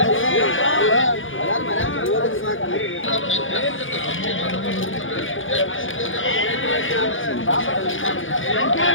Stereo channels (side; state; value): right; late; 0.58 ms